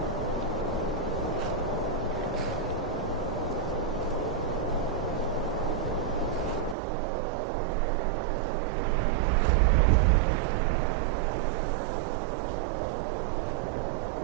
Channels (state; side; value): drops out; left; at 6.8 s